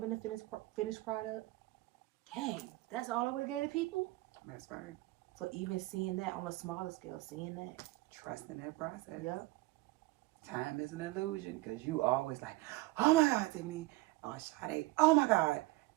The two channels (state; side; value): quieter; left; 20.4 dB